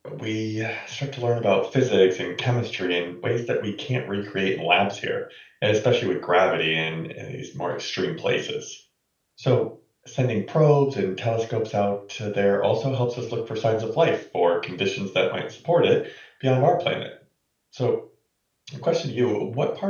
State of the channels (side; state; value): both; identical; correlation 1.00